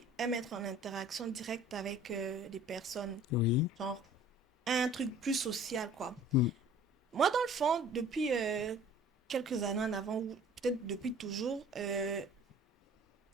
aime être en interaction directe avec des personnes, Oui. genre un truc plus social, quoi. Mm. Moi, dans le fond, depuis quelques années en avant, ou peut-être depuis toujours, euh,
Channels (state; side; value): normal; both; correlation 0.49